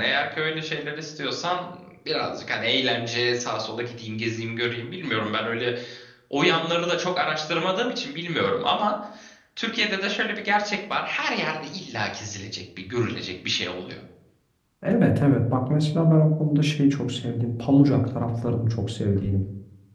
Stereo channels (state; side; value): identical; both; correlation 1.00